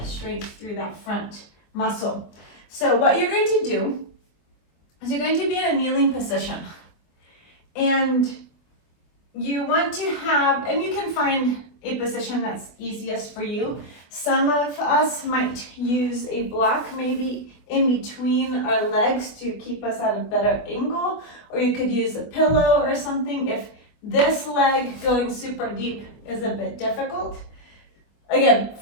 strength through that front muscle. So what you're going to do is you're going to be in a kneeling position. And you want to have, and you can find a position that's easiest for you. Some of us might use a block maybe in between our legs to keep us at a better angle, or you could use a pillow or something if this leg going super deep is a bit difficult. Again,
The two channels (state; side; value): late; right; 24 ms